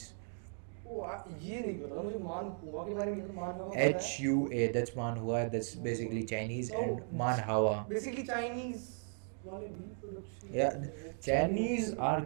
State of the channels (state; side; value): silent; left; 53 dB below the other